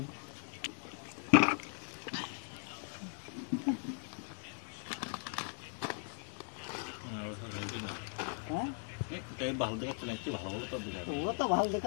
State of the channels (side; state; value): right; silent; 52 dB below the other